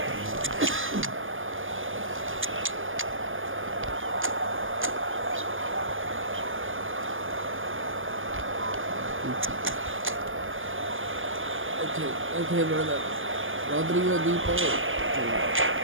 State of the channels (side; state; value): left; late; 0.58 ms